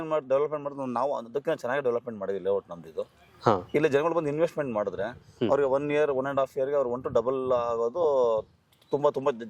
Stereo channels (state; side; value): identical; both; correlation 1.00